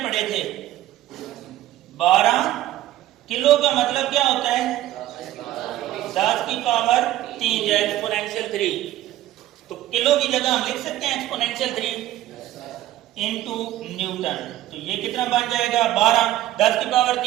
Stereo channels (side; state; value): left; quieter; 14.1 dB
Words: पढ़े थे। 12 किलो का मतलब क्या होता है, 10 की पावर 3 या एक्सपोनेंशियल 3। तो किलो की जगह हम लिख सकते हैं एक्सपोनेंशियल 3 इनटू न्यूटन। तो ये कितना बन जाएगा, 12। 10 की पावर